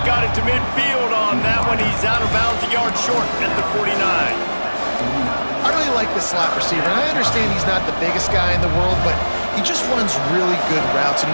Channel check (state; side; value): inverted; both; correlation -1.00